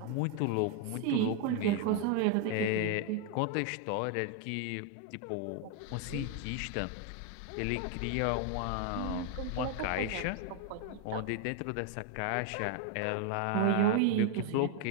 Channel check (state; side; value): different; both; correlation 0.01